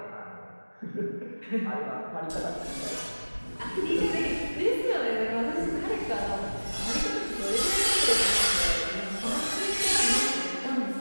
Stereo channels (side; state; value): both; inverted; correlation -1.00